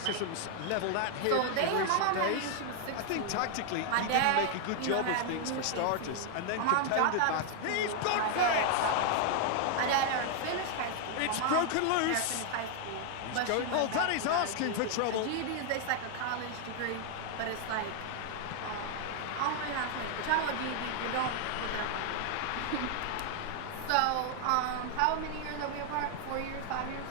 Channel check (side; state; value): both; different; correlation 0.00